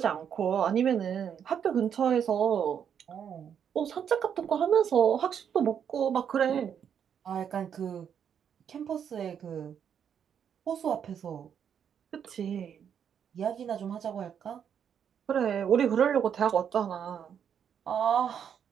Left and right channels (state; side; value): quieter; left; 8.2 dB